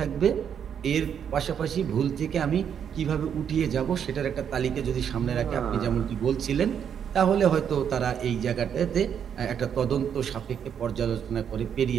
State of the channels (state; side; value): quieter; left; 8.2 dB